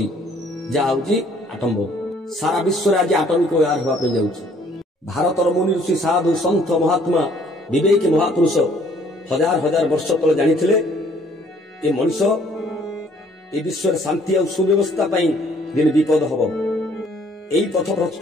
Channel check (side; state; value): both; normal; correlation 0.61